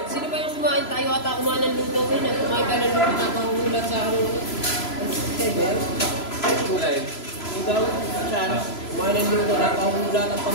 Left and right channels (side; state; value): right; late; 3.0 ms